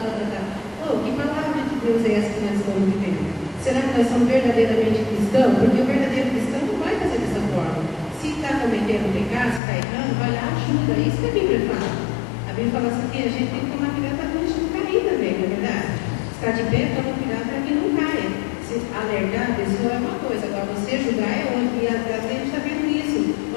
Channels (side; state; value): right; drops out; at 9.6 s